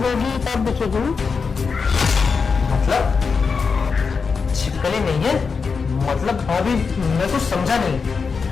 तब दिखेगी। मतलब छिपकली नहीं है, मतलब भाभी मैं कुछ समझा नहीं।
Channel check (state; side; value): quieter; right; 5.2 dB